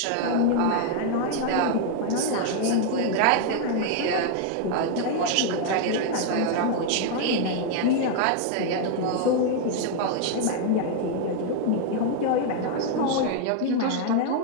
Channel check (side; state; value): both; different; correlation 0.00